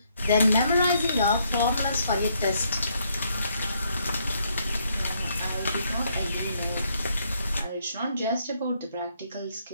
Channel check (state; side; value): inverted; both; correlation -0.73